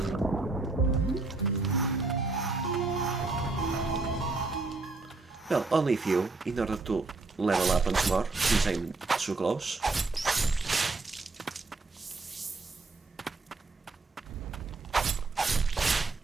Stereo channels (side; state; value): left; quieter; 3.6 dB